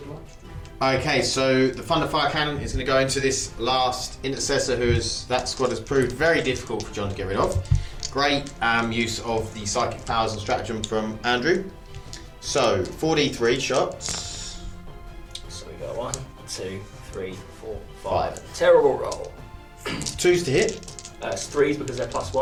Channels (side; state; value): both; identical; correlation 1.00